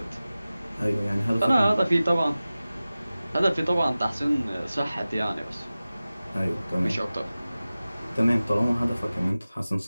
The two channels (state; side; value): inverted; both; correlation -0.97